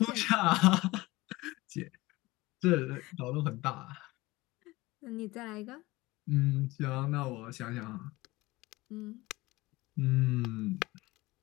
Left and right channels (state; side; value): quieter; right; 20.5 dB